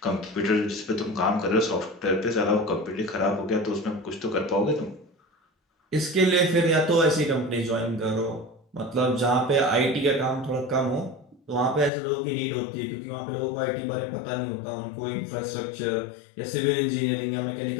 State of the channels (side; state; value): right; drops out; at 11.9 s